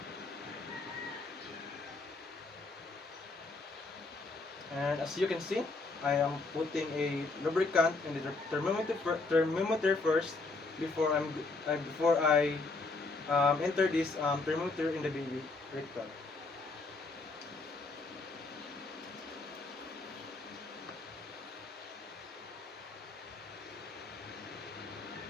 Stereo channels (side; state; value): right; quieter; 3.6 dB